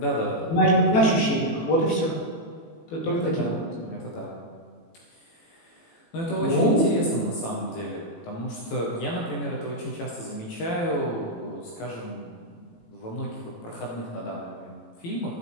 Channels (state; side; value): late; right; 18 ms